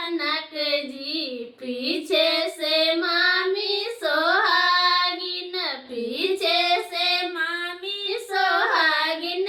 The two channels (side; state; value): both; identical; correlation 1.00